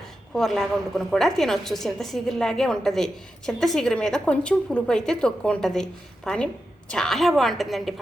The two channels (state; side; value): normal; both; correlation 0.89